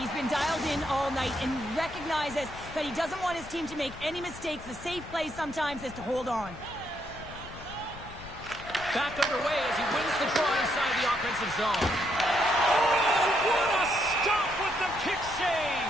been dialed in all night and recognizes that he doesn't want his team to make any mistakes. The safe play sometimes is to hold on. Back underway as he wins the draw inside the offensive zone. Oh, what a stop with the kick save!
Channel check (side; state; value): left; noise; rumble, 15 dB below the sound